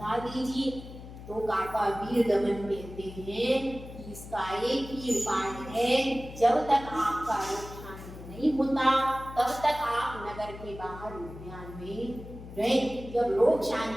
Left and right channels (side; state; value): left; noise; hum, 14 dB below the sound